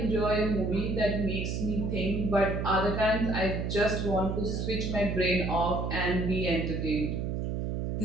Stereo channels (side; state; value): right; noise; hum, 1 dB below the sound